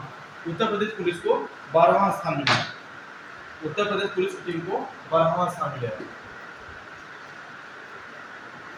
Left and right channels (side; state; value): both; identical; correlation 1.00